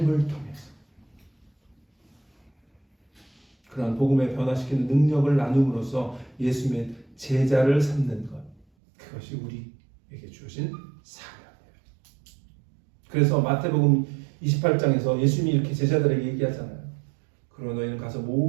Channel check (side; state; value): left; drops out; at 8.7 s